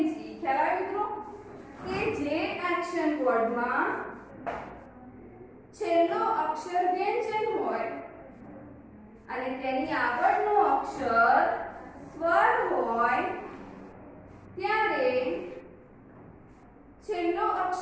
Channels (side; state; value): both; identical; correlation 1.00